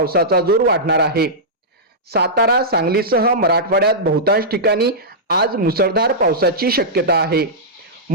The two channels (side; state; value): both; normal; correlation -0.12